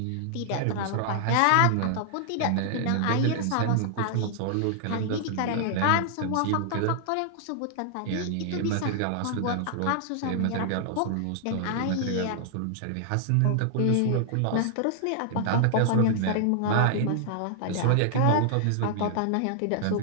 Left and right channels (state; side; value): different; both; correlation 0.00